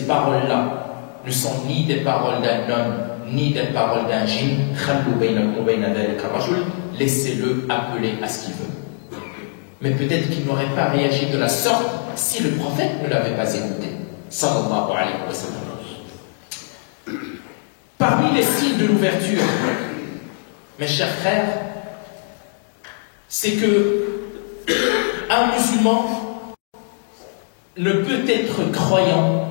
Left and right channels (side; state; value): right; silent; 58 dB below the other